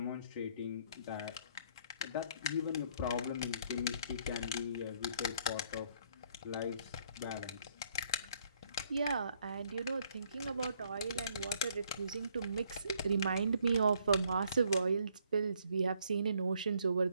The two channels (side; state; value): both; inverted; correlation -0.67